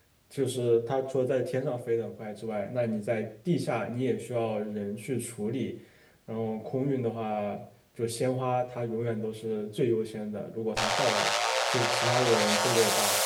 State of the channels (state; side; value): identical; both; correlation 1.00